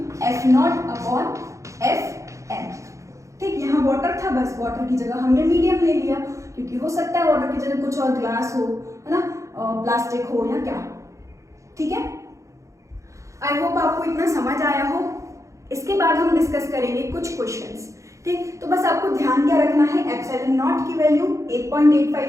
F naught upon F N. ठीक, यहाँ वाटर था, बस वाटर की जगह हमने मीडियम ले लिया, क्योंकि हो सकता है वाटर की जगह कुछ और ग्लास हो, है ना, प्लास्टिक हो या क्या। ठीक है, आई होप आपको इतना समझ आया हो। इसके बाद हम डिस्कस करेंगे कुछ क्वेश्चंस। ठीक, तो बस आपको ध्यान क्या रखना है, एप्सिलॉन नॉट की वैल्यू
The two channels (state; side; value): late; left; 0.15 ms